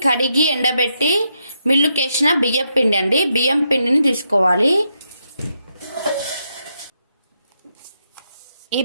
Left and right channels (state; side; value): inverted; both; correlation -0.81